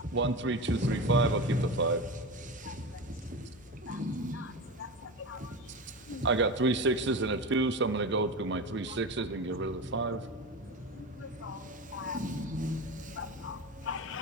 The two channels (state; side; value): normal; both; correlation 0.24